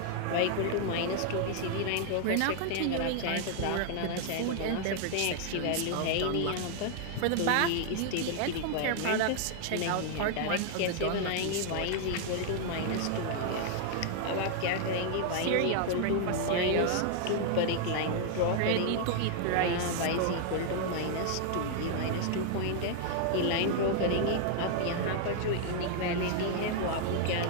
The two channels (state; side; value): different; both; correlation 0.00